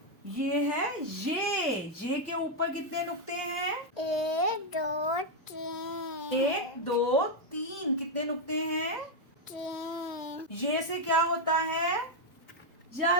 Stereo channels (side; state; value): right; late; 1.6 ms